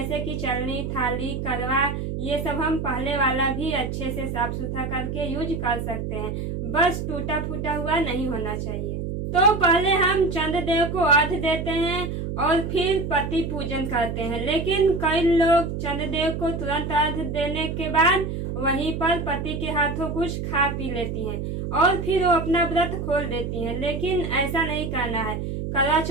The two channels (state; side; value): noise; right; hum, 4 dB below the sound